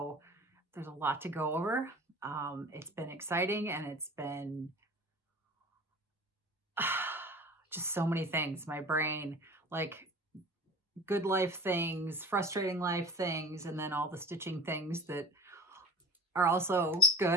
there's a lot to go over. It's been exciting and it's been just so many things. My brain, like good life things, frustrating life things, and then all the stitching things that are also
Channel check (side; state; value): both; normal; correlation 0.38